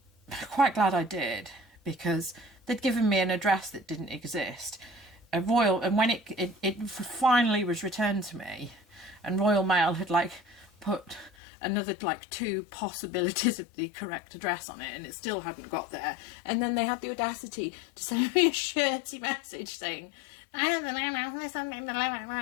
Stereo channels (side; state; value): right; drops out; at 11.3 s